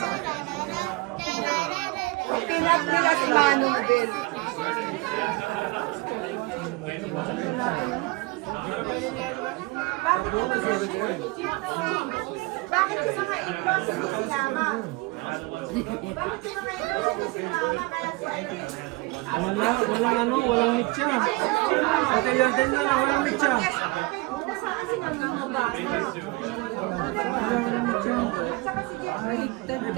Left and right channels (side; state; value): left; quieter; 23.9 dB